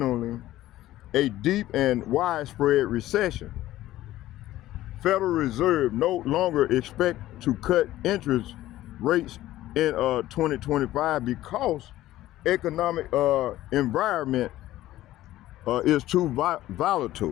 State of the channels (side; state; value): right; quieter; 15.0 dB